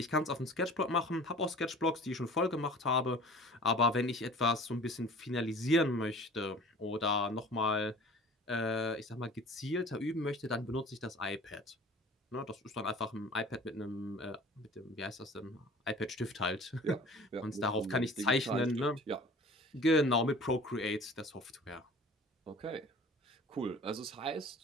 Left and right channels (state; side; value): normal; both; correlation 0.44